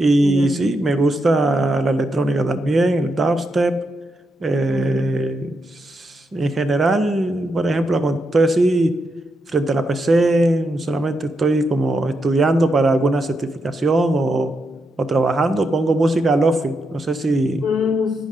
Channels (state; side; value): normal; both; correlation 0.83